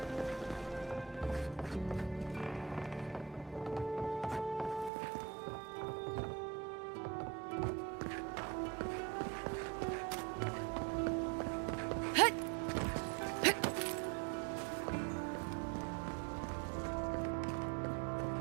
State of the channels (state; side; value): drops out; left; at 4.9 s